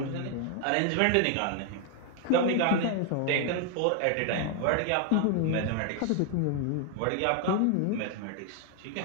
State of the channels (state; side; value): different; both; correlation 0.00